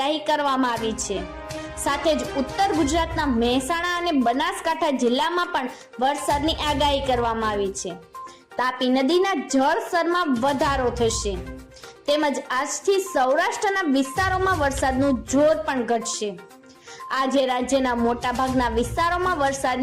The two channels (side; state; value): both; identical; correlation 1.00